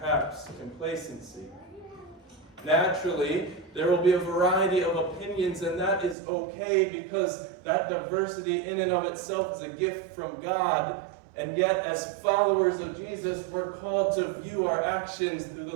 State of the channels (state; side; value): drops out; left; at 6.2 s